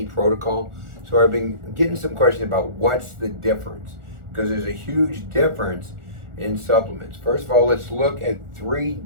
protocol. So I've been getting some questions about what's the difference, because there's a huge difference in supplements. First of all, let's look at three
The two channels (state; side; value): late; left; 1.4 ms